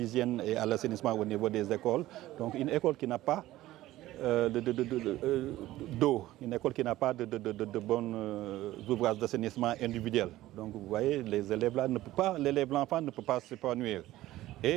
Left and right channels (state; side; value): quieter; left; 15.8 dB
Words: et à l'assainissement au niveau des écoles. Donc, une école qui n'a pas d'eau, une école qui n'a pas de bons ouvrages d'assainissement individuels. Donc vous voyez, l'enfant ne peut pas s'épanouir.